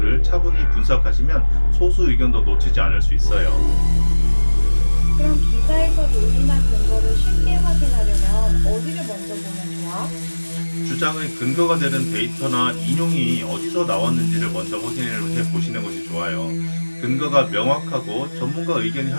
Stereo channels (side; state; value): both; inverted; correlation -1.00